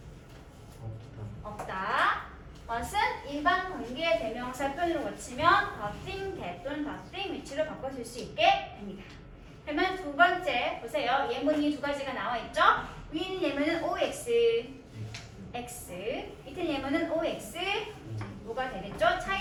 없다. what은 일반 관계대명사 표현으로 고치면 the thing, that 또는 the thing 위치로 바꿔 쓸 수 있게 됩니다. 그러면 두 번째 보세요. 예문이 두 가지가 나와 있죠? 위에 있는 예문은 OX, X. 밑에 예문은 OX, 뭐가 되겠죠?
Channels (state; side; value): identical; both; correlation 1.00